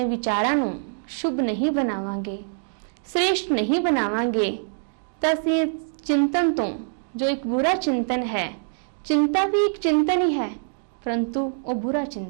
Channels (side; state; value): left; silent; digital silence